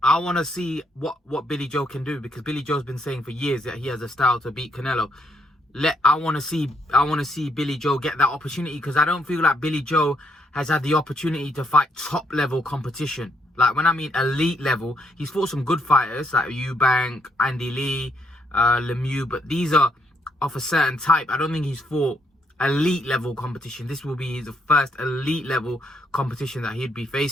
I want to see what Billy Joe can do, because Billy Joe's been saying for years that he has a style to beat Canelo. I want to see Billy Joe get that opportunity, because I don't feel like Billy Joe has had the opportunity to fight top level competition. Like, when I mean elite level, he's fought some good fighters like Eubank, Andy Lee, Lemieux, but these are of a certain type. I don't think he's fought elite level competition. This will be the first elite level competition that he'd be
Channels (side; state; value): both; normal; correlation 0.74